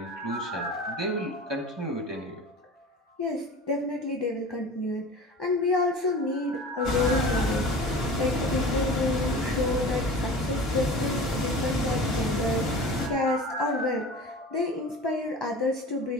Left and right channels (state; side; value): normal; both; correlation 0.37